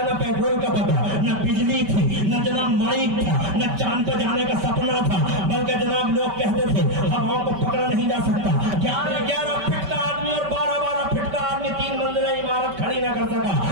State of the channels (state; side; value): late; left; 5.2 ms